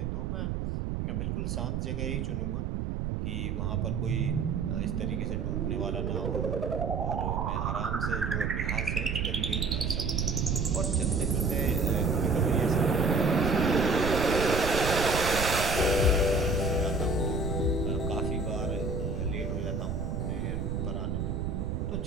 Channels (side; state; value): right; noise; rumble, 2 dB below the sound